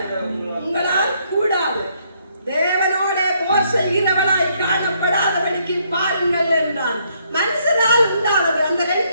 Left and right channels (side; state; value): both; inverted; correlation -0.71